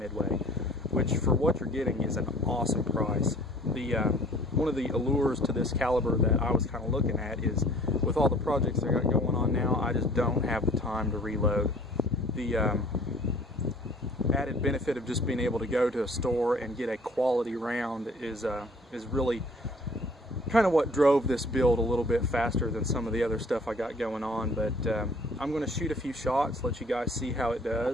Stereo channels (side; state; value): both; normal; correlation 0.53